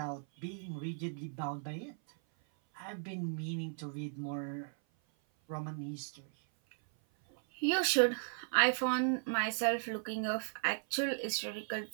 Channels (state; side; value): silent; left; 53 dB below the other